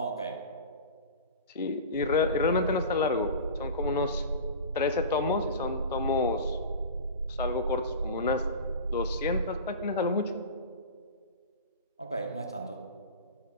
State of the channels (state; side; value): inverted; both; correlation -0.32